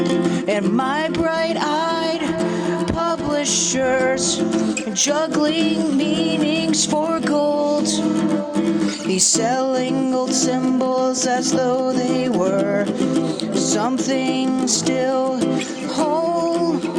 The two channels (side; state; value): both; identical; correlation 1.00